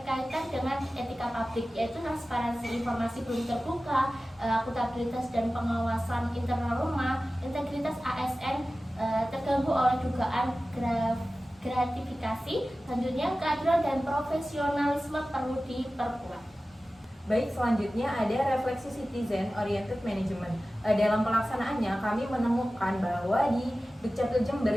dengan etika publik, yaitu transparansi informasi belum terbuka, akuntabilitas dan pengawasan internal rumah, integritas ASN terganggu oleh dugaan gratifikasi. Selanjutnya keadilan dan profesionalisme perlu diperkuat. Baik, selanjutnya ada refleksi citizen oriented management. Dalam pelaksanaannya kami menemukan bahwa di Dukcapil Jember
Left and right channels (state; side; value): normal; both; correlation 0.96